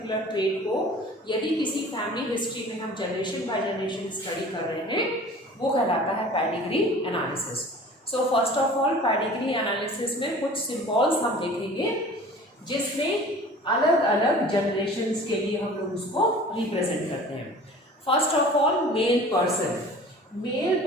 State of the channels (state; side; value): normal; both; correlation 0.44